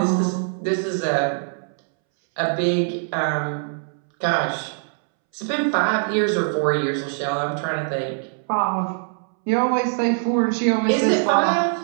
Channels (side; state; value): left; silent; 64 dB below the other